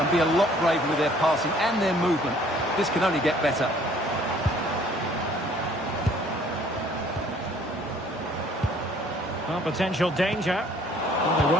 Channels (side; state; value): both; normal; correlation 0.58